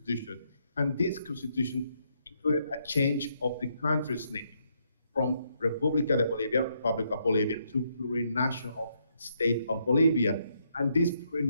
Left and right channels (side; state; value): both; inverted; correlation -0.75